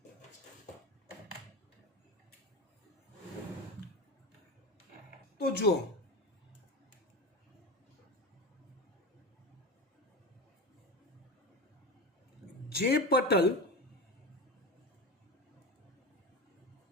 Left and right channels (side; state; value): both; normal; correlation 0.24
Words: તો જુઓ, જે પટલ